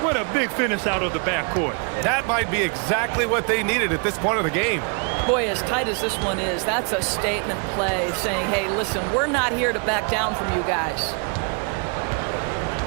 What a big finish out of the backcourt. That might be exactly what they needed at this point of the game. Boy, as tight as this one is, that's a statement play saying, hey, listen, we're not here to back down from you guys.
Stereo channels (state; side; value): quieter; left; 37.3 dB